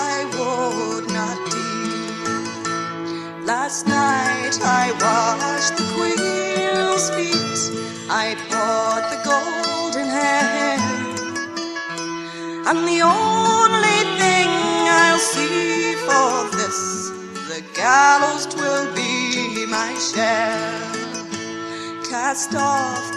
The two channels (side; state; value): both; identical; correlation 1.00